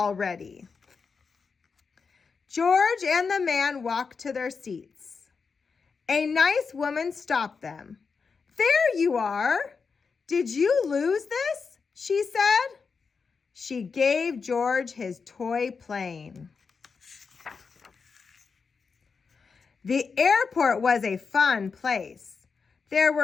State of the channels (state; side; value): quieter; right; 5.2 dB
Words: George and the man walked to their seats. A nice woman stopped them. There you are. Did you lose this? She said. She gave George his toy plane. The airport was a fun place. There